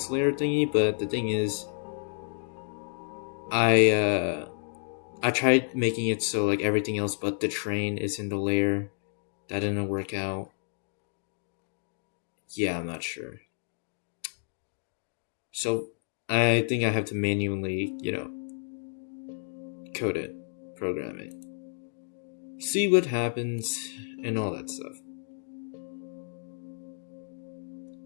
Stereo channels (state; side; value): silent; right; digital silence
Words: layer thingy, but the thing is, I tried making it so like everything else but the train is in the layer. That didn't work out. Yeah, I'm not sure. So I think I have to manually, code it, program it, see what happens, and all that stuff.